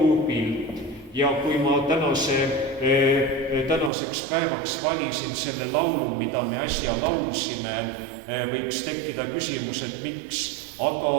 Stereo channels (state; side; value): drops out; left; at 3.9 s